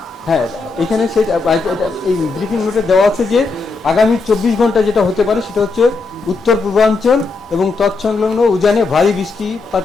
হ্যাঁ, এখানে এই ব্রিফিং নোটে দেওয়া আছে যে আগামী 24 ঘন্টা যেটা হতে পারে সেটা হচ্ছে উত্তর পূর্বাঞ্চল এবং তৎসংলগ্ন উজানে ভারী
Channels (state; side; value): quieter; right; 4.0 dB